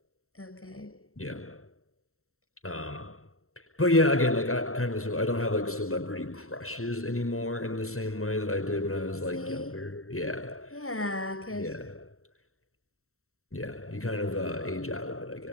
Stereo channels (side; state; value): right; late; 0.63 ms